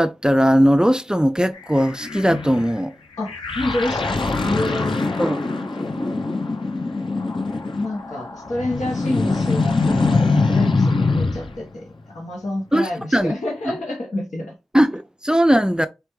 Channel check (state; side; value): normal; both; correlation 0.93